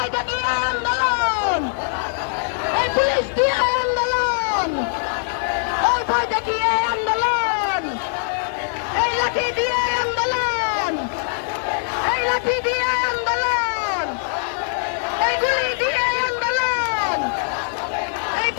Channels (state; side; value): silent; right; 64 dB below the other